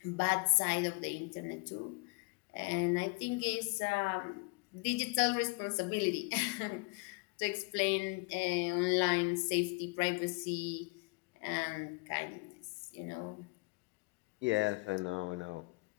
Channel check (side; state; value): right; quieter; 29.4 dB